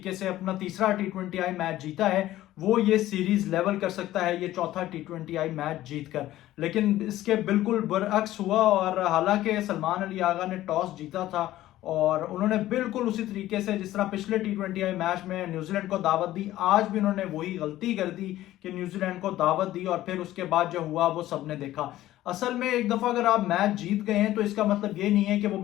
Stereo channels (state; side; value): quieter; right; 14.7 dB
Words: से अपना तीसरा टी20 मैच जीता है वो ये सीरीज लेवल कर सकता है ये चौथा टी20 मैच जीतकर। लेकिन इसके बिल्कुल बरअक्स हुआ और हालांकि सलमान अली आगा ने टॉस जीता था और उन्होंने बिल्कुल उसी तरीके से जिस तरह पिछले टी20 मैच में न्यूजीलैंड को दावत दी, आज भी उन्होंने वही गलती कर दी कि न्यूजीलैंड को दावत दी और फिर उसके बाद जो हुआ वो सबने देखा। असल में एक दफा अगर आप मैच जीत गए हैं तो इसका मतलब ये नहीं है कि वो